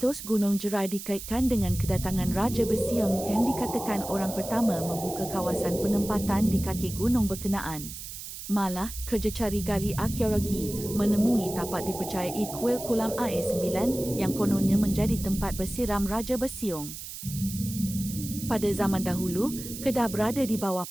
Gunung Jerai dikaitkan dengan kedatangan Raja Bersiung yang dikatakan orang pertama membuka kawasan penempatan di kaki gunung berkenaan. Malah, kerja cari gali arkeologi menemui tapak dipercayai kuil kolam air 9 yang kononnya menjadi tempat bersiram Raja Bersiung. Pada zaman dahulu, Kedah berada di bawah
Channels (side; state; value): right; noise; hiss, 10 dB below the sound